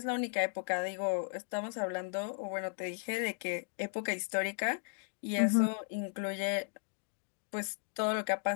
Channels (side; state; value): right; silent; digital silence